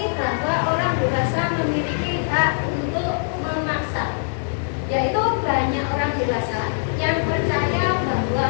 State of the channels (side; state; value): right; silent; digital silence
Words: bahwa orang dewasa memiliki hak untuk memaksa, yaitu banyak orang dewasa yang percaya